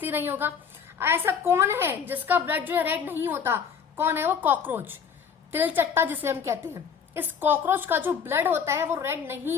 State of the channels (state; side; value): quieter; right; 6.9 dB